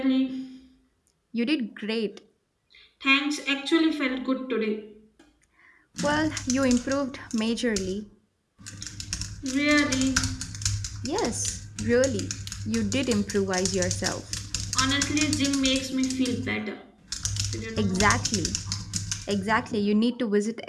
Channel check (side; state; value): both; identical; correlation 1.00